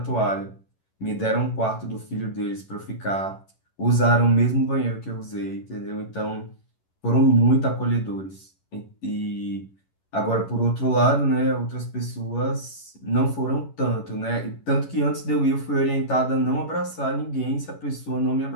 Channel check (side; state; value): right; late; 11 ms